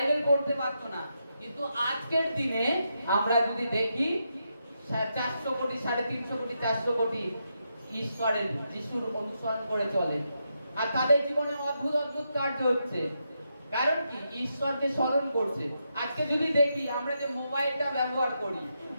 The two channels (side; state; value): both; inverted; correlation -0.83